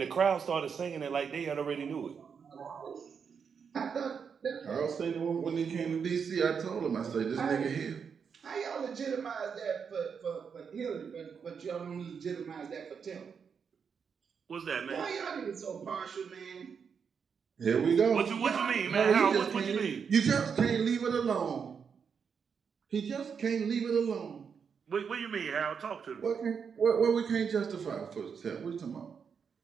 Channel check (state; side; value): quieter; left; 6.5 dB